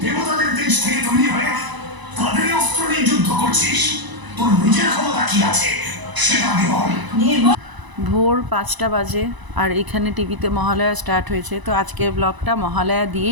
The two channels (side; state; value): left; late; 1.0 ms